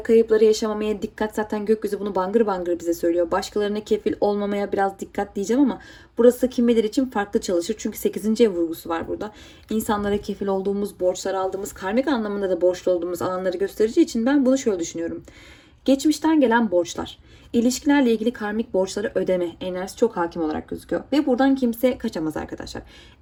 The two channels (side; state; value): both; identical; correlation 1.00